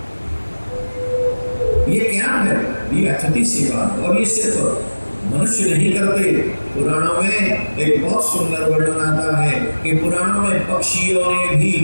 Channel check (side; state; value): both; inverted; correlation -1.00